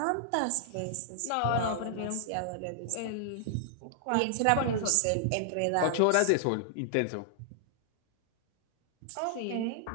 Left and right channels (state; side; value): different; both; correlation -0.01